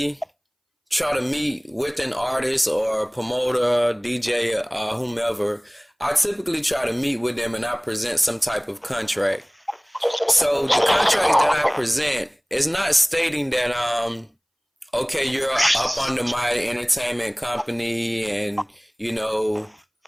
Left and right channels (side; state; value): both; identical; correlation 1.00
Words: try to meet with an artist or promoter, DJ, whomever. I typically try to meet with them and I present some type of contract. So the contract that I present is not stating that okay, you're up under my entertainment company, and